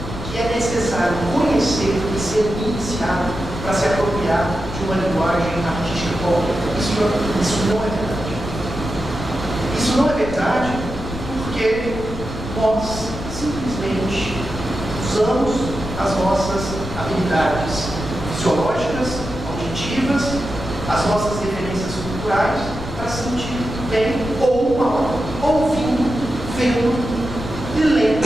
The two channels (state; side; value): noise; left; rumble, 9 dB below the sound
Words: que é necessário conhecer e ser iniciado para se apropriar de uma linguagem artística qualquer. Isso não é verdade. Isso não é verdade porque nós simplesmente usamos as nossas habilidades fisiológicas, auditivas, as nossas referências culturais para sentir bem ou mal, ouvindo, vendo e lendo